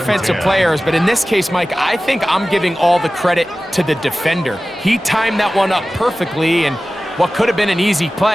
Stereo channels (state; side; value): normal; both; correlation 0.96